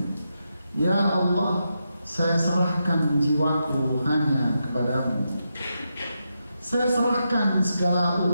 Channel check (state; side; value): inverted; both; correlation -0.86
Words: Ya Allah, saya serahkan jiwaku hanya kepadamu, saya serahkan segala